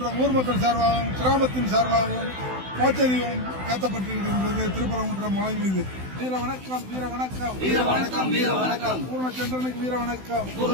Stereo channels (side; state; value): left; late; 16 ms